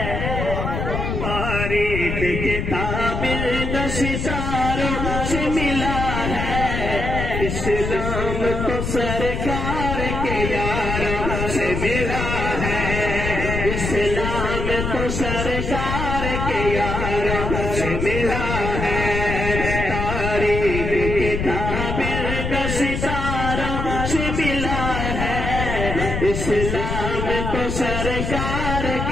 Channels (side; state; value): left; noise; rumble, 3 dB below the sound